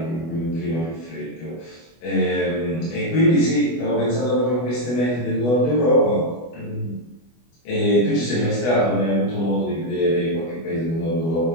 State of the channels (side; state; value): right; late; 24 ms